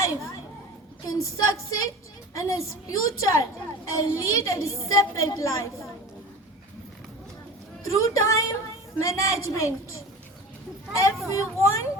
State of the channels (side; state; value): both; normal; correlation 0.35